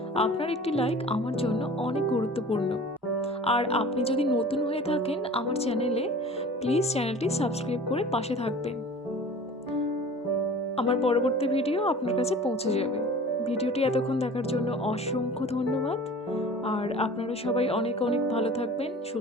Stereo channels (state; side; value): normal; both; correlation 0.42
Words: আপনার একটি লাইক আমার জন্য অনেক গুরুত্বপূর্ণ। আর আপনি যদি নতুন হয়ে থাকেন আমার চ্যানেলে, প্লিজ চ্যানেলটি সাবস্ক্রাইব করে পাশে থাকবেন। আমার পরবর্তী ভিডিও আপনার কাছে পৌঁছে যাবে। ভিডিওটি এতক্ষণ দেখার জন্য অসংখ্য ধন্যবাদ। আর আপনারা সবাই অনেক অনেক ভালো থাকবেন,